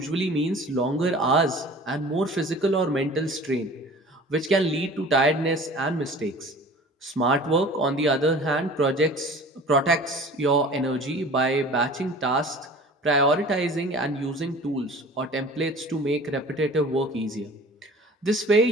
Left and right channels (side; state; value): both; normal; correlation 0.44